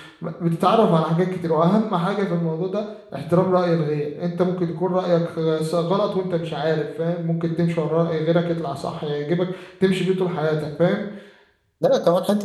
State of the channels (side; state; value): both; identical; correlation 1.00